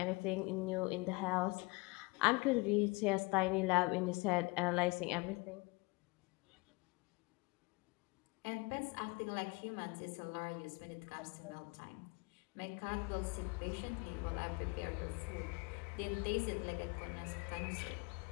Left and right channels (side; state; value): right; quieter; 26.2 dB